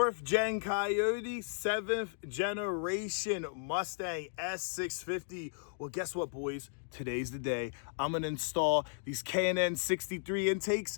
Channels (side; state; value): right; silent; digital silence